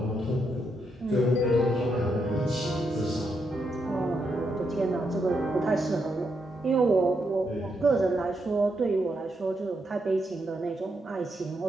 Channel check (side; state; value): both; normal; correlation 0.80